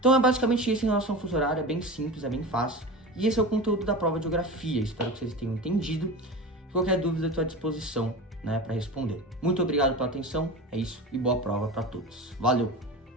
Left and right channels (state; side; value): normal; both; correlation 0.29